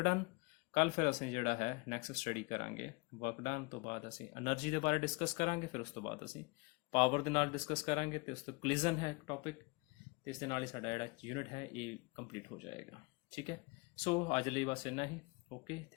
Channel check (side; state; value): right; quieter; 26.4 dB